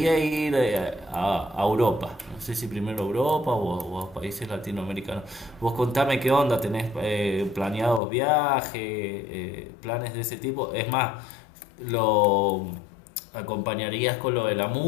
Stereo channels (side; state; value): right; drops out; at 8.0 s